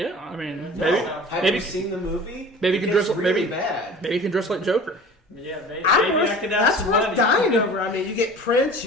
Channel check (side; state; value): both; normal; correlation 0.41